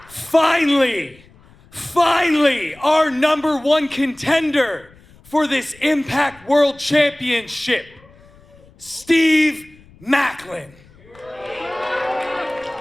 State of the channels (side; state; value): left; noise; rumble, 26 dB below the sound